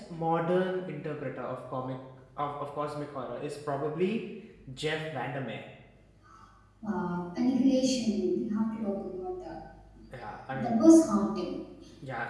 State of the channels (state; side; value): identical; both; correlation 1.00